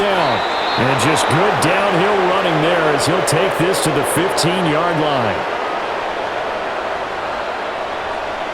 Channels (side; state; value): both; identical; correlation 1.00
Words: And just good downhill running there as he'll take this to the 15-yard line.